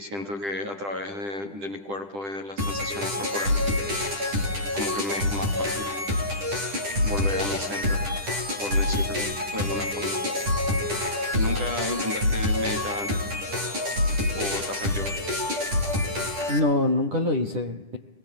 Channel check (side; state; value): left; late; 10 ms